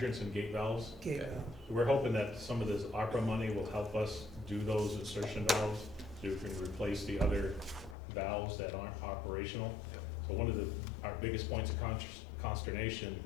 and gate valves. Okay. We're hoping that some of this ARPA money will help us do those insertion valves, so we can replace the other valves that aren't operational. Yep. So one of our biggest points of consternation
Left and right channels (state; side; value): drops out; right; at 8.0 s